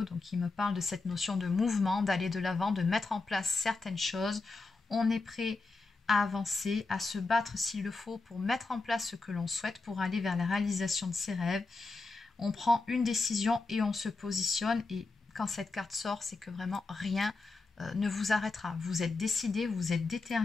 donc qui me parle de cette notion de mouvement, d'aller de l'avant, de mettre en place certaines choses. On est prêt à avancer, à se battre s'il le faut pour mettre en place ce que l'on souhaite, pour aller vers la réalisation de ses rêves. On prend une décision et on se positionne. Et quand cette carte sort, c'est que vraiment rien ne vous arrêtera. Vous êtes décidé, vous êtes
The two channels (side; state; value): right; quieter; 3.6 dB